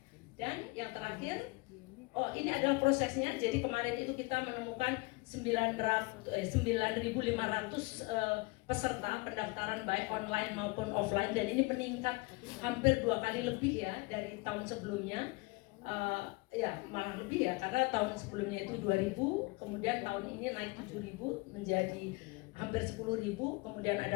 Dan yang terakhir, ini adalah prosesnya. Jadi kemarin itu kita menemukan 9.500 peserta pendaftaran baik online maupun offline, dan ini meningkat hampir 2 kali lebih ya dari tahun sebelumnya. Malah lebih ya, karena tahun sebelumnya itu 2.000, kemudian tahun ini naik 7.000 menjadi hampir 10.000. Kemudian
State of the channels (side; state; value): right; quieter; 25.6 dB